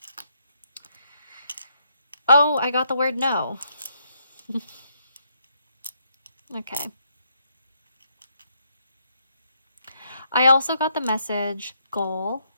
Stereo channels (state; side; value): inverted; both; correlation -0.74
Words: Oh, I got the word no. Okay. I also got the message goal.